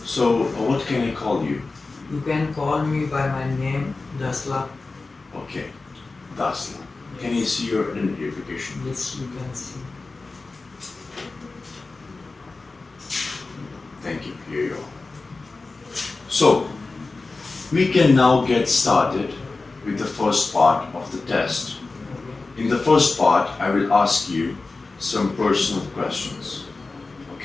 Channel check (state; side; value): quieter; right; 3.7 dB